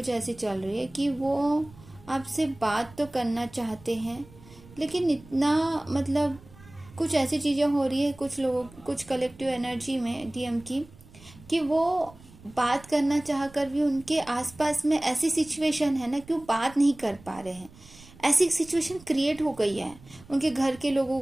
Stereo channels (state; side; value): noise; right; rumble, 22 dB below the sound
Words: ऐसी चल रही है कि वो आपसे बात तो करना चाहते हैं, लेकिन इतना कुछ ऐसी चीज़ें हो रही है कुछ लोगों, कुछ कलेक्टिव एनर्जी में डीएम की, कि वो बात करना चाह कर भी उनके आसपास में ऐसी सिचुएशन है ना कि वो बात नहीं कर पा रहे हैं। ऐसी सिचुएशन क्रिएट हो गई है, उनके घर के लोगों